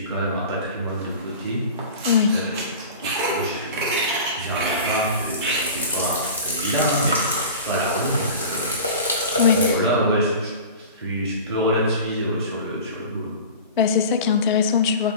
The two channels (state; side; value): inverted; both; correlation -0.36